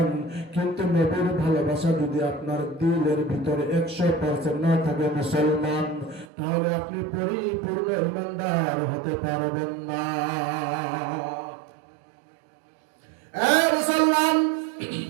কিন্তু নবীর ভালোবাসা যদি আপনার দিলের ভিতরে 100% না থাকে মুসলমান, তাহলে আপনি পরিপূর্ণ ঈমানদার হতে পারবেন না। মুসলমান,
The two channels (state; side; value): drops out; left; at 6.2 s